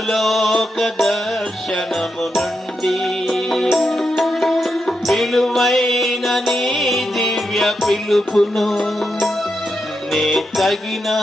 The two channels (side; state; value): both; normal; correlation 0.85